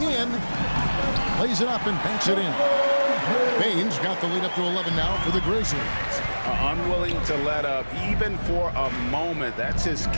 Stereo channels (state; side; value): inverted; both; correlation -1.00